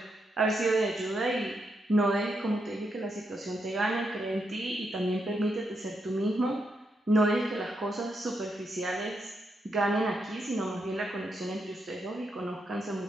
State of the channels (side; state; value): both; normal; correlation 0.81